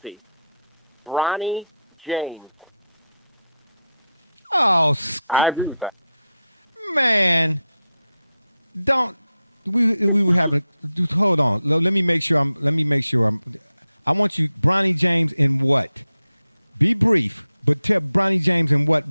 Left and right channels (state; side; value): inverted; both; correlation -0.86